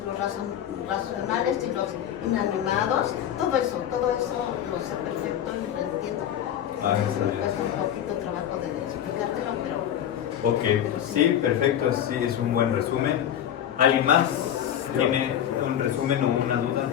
los racionales y los inanimados, todo eso lo sé perfecto y lo entiendo. Me cuesta un poquito trabajo de explicártelo, pero... Ok, sí, perfecto, sí, es un buen resumen. ¿Alguien más tiene un resumen o una duda?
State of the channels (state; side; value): quieter; right; 10.4 dB